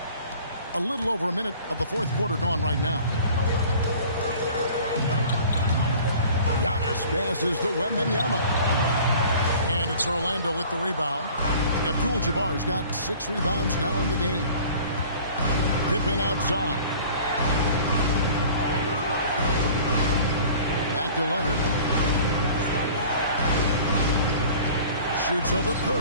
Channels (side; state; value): both; inverted; correlation -0.46